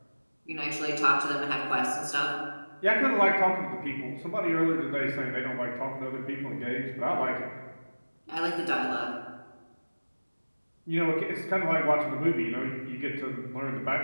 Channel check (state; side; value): inverted; both; correlation -1.00